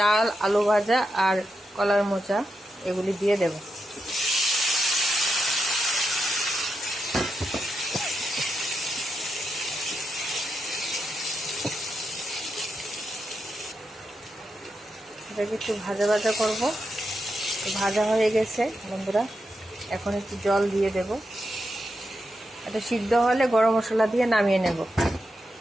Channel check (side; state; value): both; normal; correlation 0.86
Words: আলু ভাজা আর কলার মোচা, এগুলি দিয়ে দেব। এটাকে একটু ভাজা ভাজা করবো। ভাজা হয়ে গেছে বন্ধুরা, এখন একটু জল দিয়ে দেব। এটা সিদ্ধ হলে গরম মশলা দিয়ে নামিয়ে নেব।